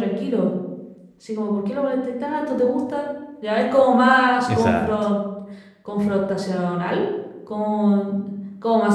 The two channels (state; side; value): identical; both; correlation 1.00